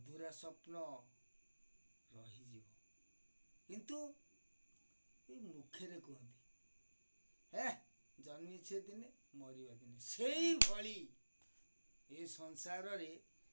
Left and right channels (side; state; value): both; inverted; correlation -1.00